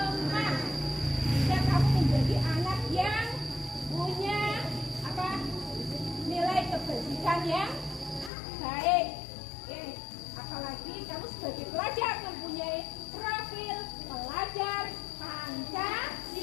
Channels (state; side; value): drops out; right; at 8.3 s